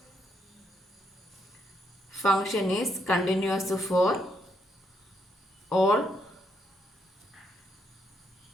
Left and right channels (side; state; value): both; normal; correlation 0.76